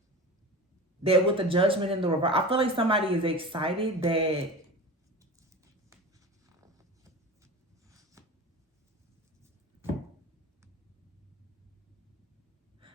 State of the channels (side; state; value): both; normal; correlation 0.32